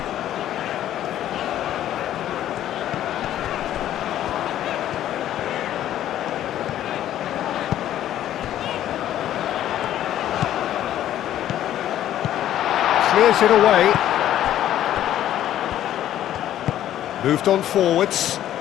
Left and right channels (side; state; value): right; quieter; 12.0 dB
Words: Clears it away. Moved on forwards.